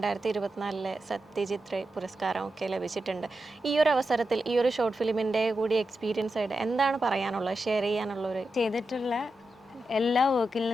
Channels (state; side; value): normal; both; correlation 0.89